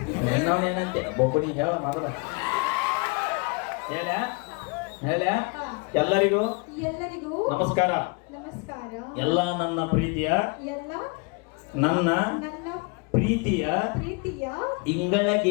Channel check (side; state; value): right; quieter; 30.4 dB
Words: ಏನಂತೆ ಒಬ್ಬನಿ ಹೇಳ ಮೊದಲ ಹೇಳ ಹೇಳ ಎಲ್ಲರಿಗೂ ಎಲ್ಲರಿಗೂ ನಮಸ್ಕಾರ ನಮಸ್ಕಾರ ಎಲ್ಲ ನನ್ನ ಪ್ರೀತಿಯ ಎಲ್ಲ ನನ್ನ ನನ್ನ ಪ್ರೀತಿಯ ಪ್ರೀತಿಯ